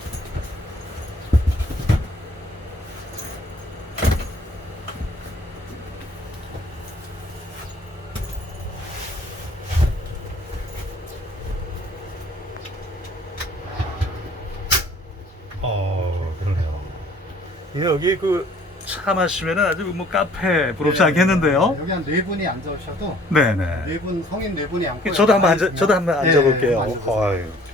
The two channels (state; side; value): normal; both; correlation 0.56